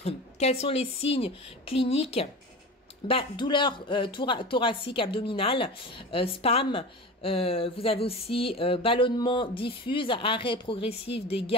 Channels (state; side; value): normal; both; correlation 0.31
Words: Quels sont les signes cliniques? Douleur thoracique abdominale, spasme. Vous avez aussi ballonnement diffuse, arrêt progressif des